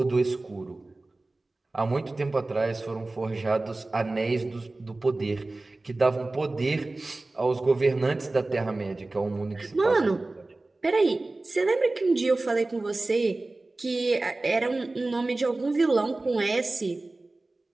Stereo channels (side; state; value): left; quieter; 3.0 dB